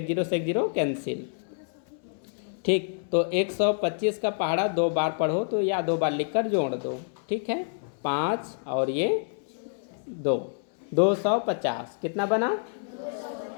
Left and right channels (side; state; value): right; silent; 60 dB below the other